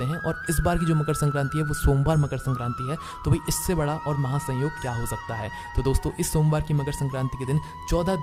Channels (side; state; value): both; identical; correlation 1.00